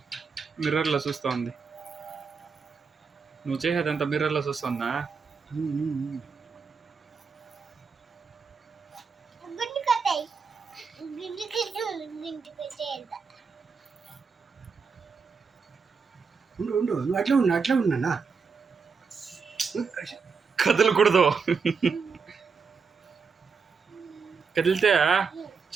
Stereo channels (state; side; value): quieter; left; 5.4 dB